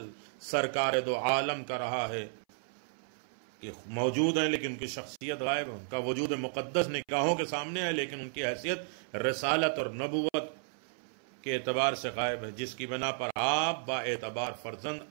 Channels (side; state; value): left; silent; 56 dB below the other